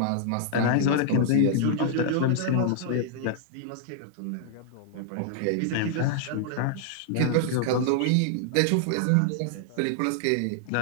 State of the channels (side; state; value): both; different; correlation -0.01